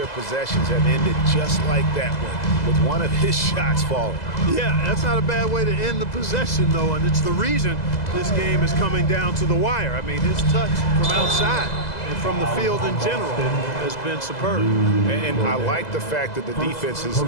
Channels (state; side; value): late; right; 2.0 ms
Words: possessions have ended just like that one, with one of his shots falling. Yeah, that's not a bad way to end the possession, though, and it's the reason this game is coming down to the wire. I mean, his touch from outside and from the field in general has been superb. And I like the fact that the defense is